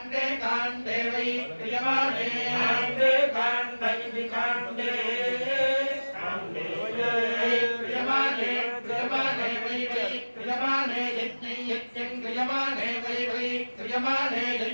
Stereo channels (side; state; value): both; inverted; correlation -1.00